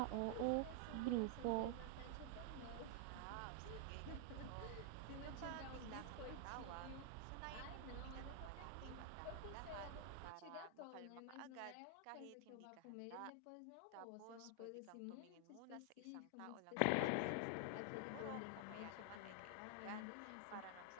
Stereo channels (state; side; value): different; both; correlation 0.00